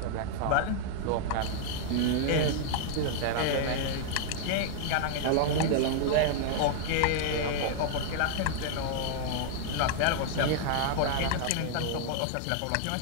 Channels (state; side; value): different; both; correlation -0.01